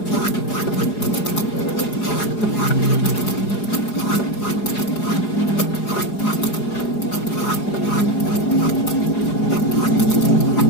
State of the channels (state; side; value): late; right; 4.8 ms